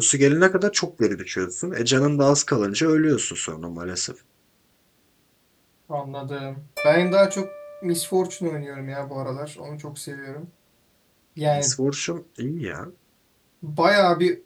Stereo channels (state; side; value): identical; both; correlation 1.00